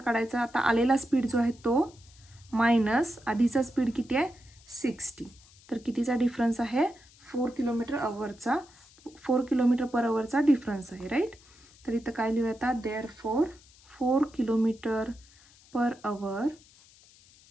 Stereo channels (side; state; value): left; noise; hiss, 26 dB below the sound